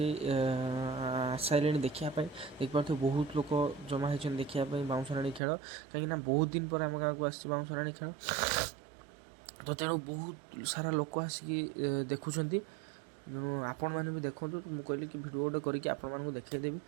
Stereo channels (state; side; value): drops out; left; at 5.4 s